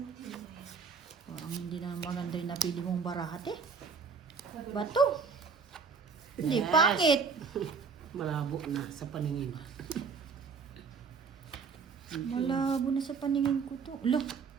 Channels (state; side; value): quieter; left; 5.5 dB